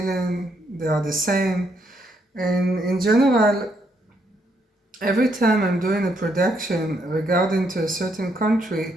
They are the same. And in general, every time I'm doing a production regarding to a certain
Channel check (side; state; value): both; normal; correlation 0.74